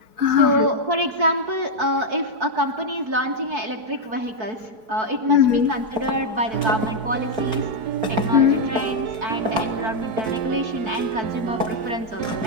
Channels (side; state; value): left; late; 4.3 ms